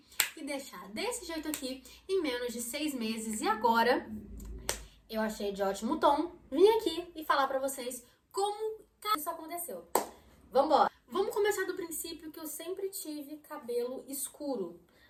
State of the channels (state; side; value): identical; both; correlation 1.00